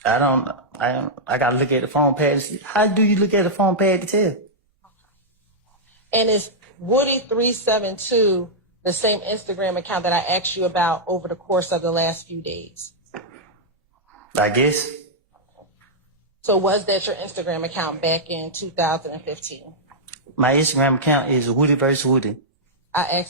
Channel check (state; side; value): normal; both; correlation -0.08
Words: I gotta look at the phone pad to see. How do you look at the phone pad to tell? And is Woody372 the same Instagram account that I asked you about over the course of the last few days? I guess. So was that your Instagram account back in 2015? My Instagram account is Woody vs. Woody. I